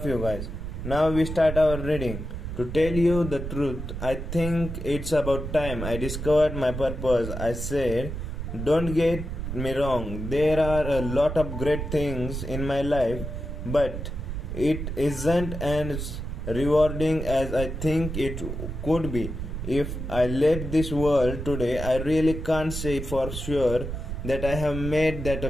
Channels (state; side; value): noise; right; rumble, 6 dB below the sound